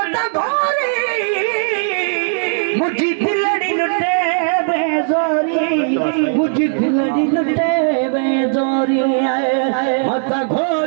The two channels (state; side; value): silent; left; digital silence